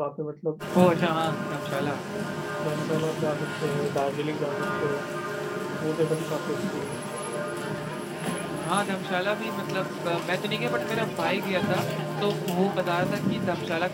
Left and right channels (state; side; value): identical; both; correlation 1.00